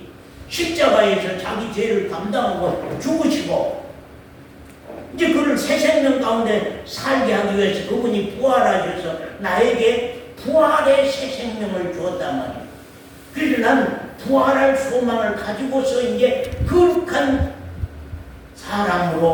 십자가에서 자기 죄를 감당하고 죽으시고 이제 그를 새 생명 가운데 살게 하기 위해서 그분이 부활하셔서 나에게 부활의 새 생명을 주었단 말이에요. 그래서 난 부활할 소망을 가지고서 이제 거룩한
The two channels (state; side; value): identical; both; correlation 1.00